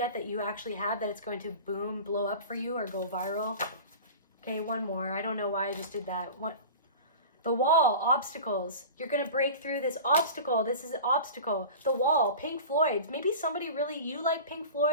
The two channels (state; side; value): inverted; both; correlation -0.35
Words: that you actually have, that it's going to boom, blow up for you or go viral. Okay, one more. I don't know why I just did that. The wall, obstacles. You're going to break through this obstacle. This is an obstacle. The wall, Pink Floyd. Maybe somebody really, you like Pink